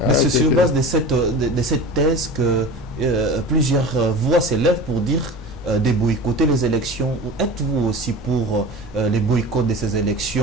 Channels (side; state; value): both; normal; correlation 0.34